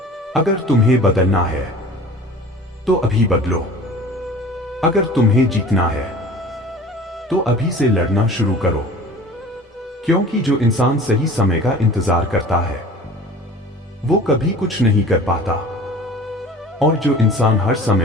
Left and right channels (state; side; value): normal; both; correlation 0.43